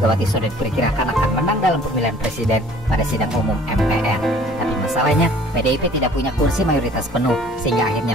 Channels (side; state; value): both; normal; correlation 0.52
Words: sudah diperkirakan akan menang dalam pemilihan presiden pada sidang umum MPR. Tapi masalahnya, PDIP tidak punya kursi mayoritas penuh, sehingga